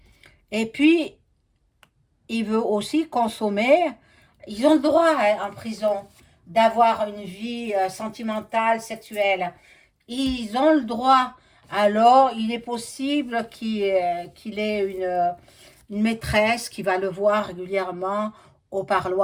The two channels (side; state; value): both; identical; correlation 1.00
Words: Et puis, il veut aussi consommer. Ils ont le droit en prison d'avoir une vie sentimentale, sexuelle. Ils ont le droit. Alors, il est possible qu'il ait une maîtresse qui va le voir régulièrement au